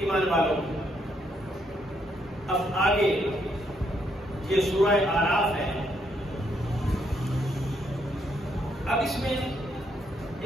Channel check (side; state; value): both; normal; correlation 0.74